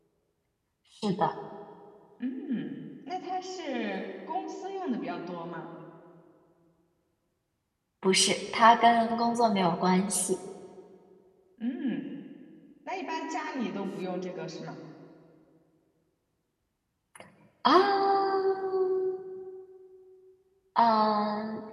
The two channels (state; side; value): identical; both; correlation 1.00